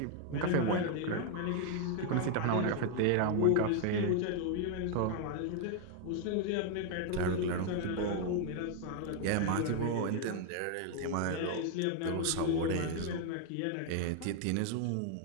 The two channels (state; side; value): different; both; correlation 0.00